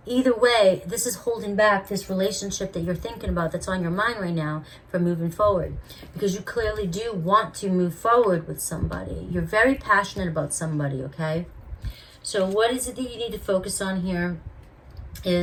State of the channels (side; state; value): both; identical; correlation 1.00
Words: either way, this is holding back this relationship that you're thinking about, that's on your mind right now, from moving forward, because you clearly do want to move forward with somebody. You're very passionate about somebody, okay? So what is it that you need to focus on here